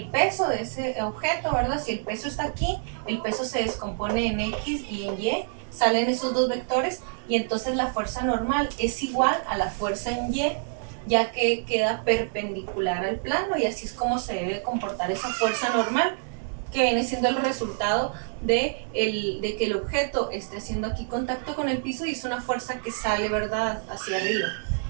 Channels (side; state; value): left; silent; digital silence